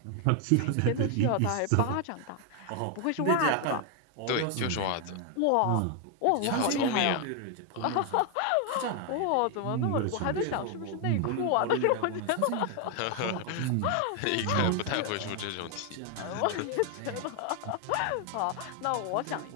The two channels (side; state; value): both; different; correlation 0.00